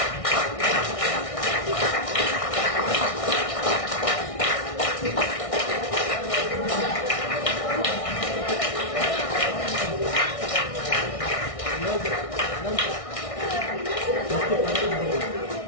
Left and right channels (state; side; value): late; right; 1.6 ms